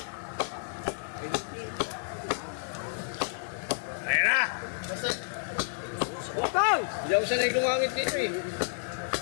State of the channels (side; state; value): right; silent; digital silence